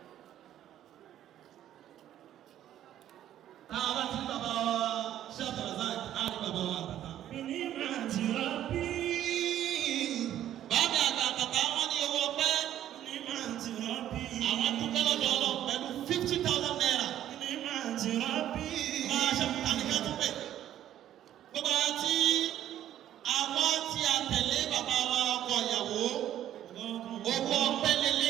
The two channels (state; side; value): quieter; left; 11.7 dB